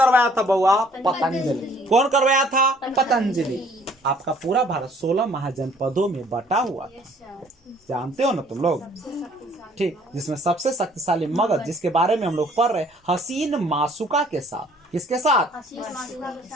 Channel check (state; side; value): normal; both; correlation 0.58